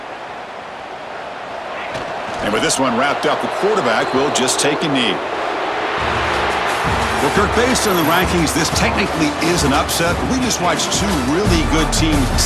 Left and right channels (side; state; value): both; identical; correlation 1.00